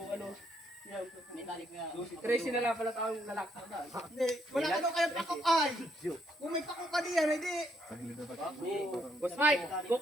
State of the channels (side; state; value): both; normal; correlation 0.73